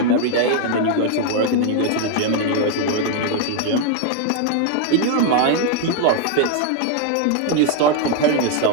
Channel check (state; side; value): different; both; correlation 0.00